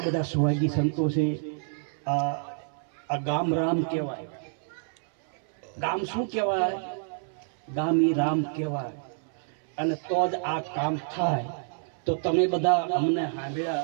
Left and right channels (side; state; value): left; silent; 59 dB below the other